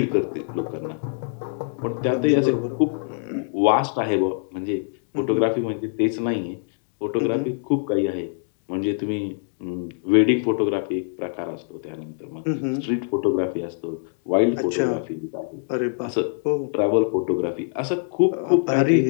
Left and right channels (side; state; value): right; silent; digital silence